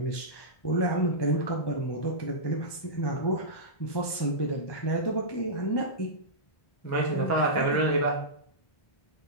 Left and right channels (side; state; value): right; late; 1.2 ms